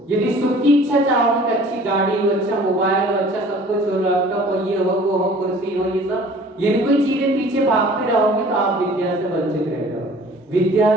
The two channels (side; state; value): both; normal; correlation 0.49